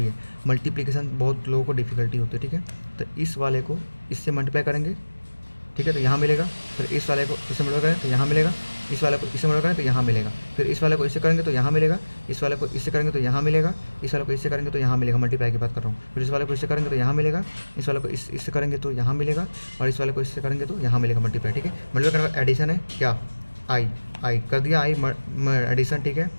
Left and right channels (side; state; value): both; inverted; correlation -1.00